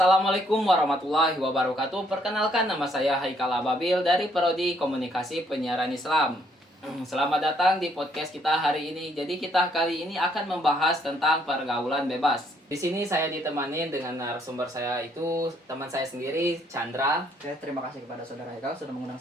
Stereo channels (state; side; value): normal; both; correlation 0.68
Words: warahmatullahi wabarakatuh. Perkenalkan, nama saya Haikal Ababil dari Prodi Komunikasi Penyiaran Islam. Selamat datang di podcast kita hari ini. Jadi kita kali ini akan membahas tentang pergaulan bebas. Di sini saya ditemani dengan narasumber saya, itu teman saya sendiri, Chandra. Oke, terima kasih kepada saudara Haikal sudah mengundang